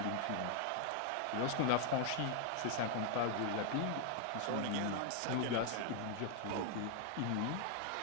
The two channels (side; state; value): both; different; correlation 0.00